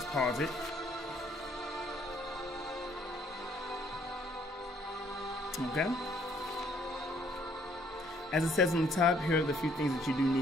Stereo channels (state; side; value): normal; both; correlation 0.64